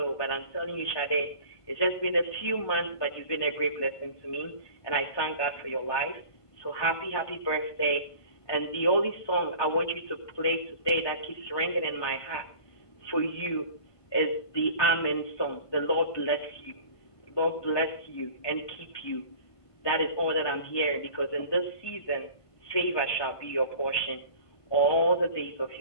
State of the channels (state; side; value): late; right; 1.5 ms